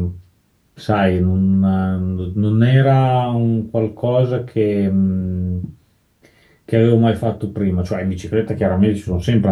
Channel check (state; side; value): identical; both; correlation 1.00